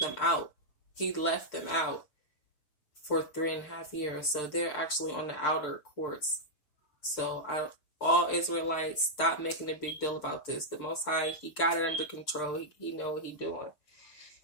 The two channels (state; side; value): late; right; 6.7 ms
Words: out. He left them out for 3.5 years. So they're actually on the outer courts. So all Israelites, stop making a big deal about this. The Most High, he got it under control. He know what he doing.